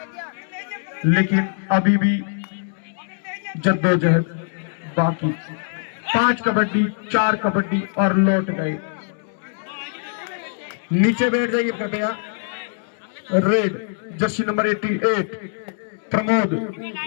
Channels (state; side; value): silent; right; 64 dB below the other